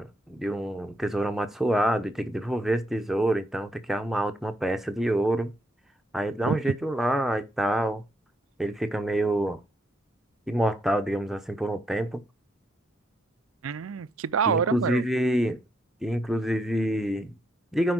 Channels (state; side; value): normal; both; correlation 0.76